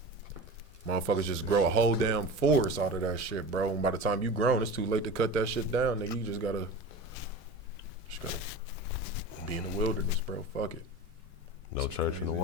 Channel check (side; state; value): both; normal; correlation 0.32